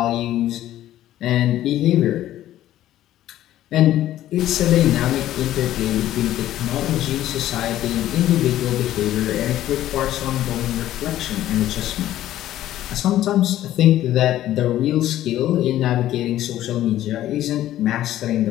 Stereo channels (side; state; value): right; quieter; 13.3 dB